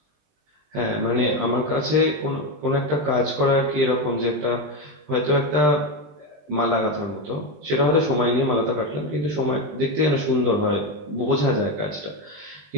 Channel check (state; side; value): late; left; 20 ms